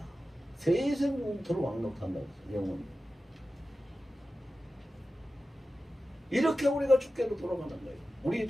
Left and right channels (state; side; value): normal; both; correlation 0.94